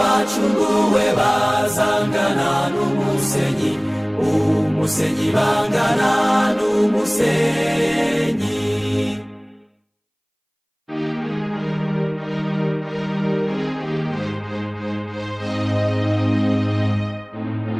bazangana n'umusenyi, umusenyi bangana n'umusenyi.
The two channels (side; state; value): both; identical; correlation 1.00